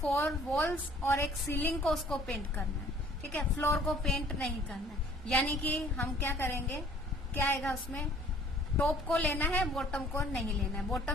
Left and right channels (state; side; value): normal; both; correlation 0.56